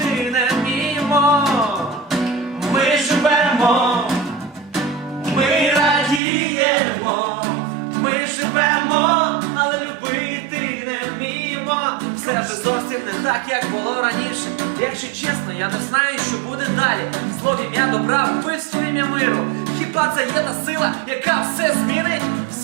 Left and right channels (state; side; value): drops out; left; at 6.2 s